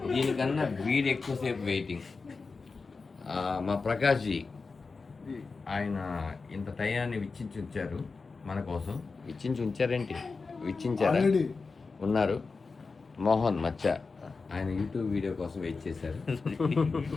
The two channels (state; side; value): quieter; right; 4.3 dB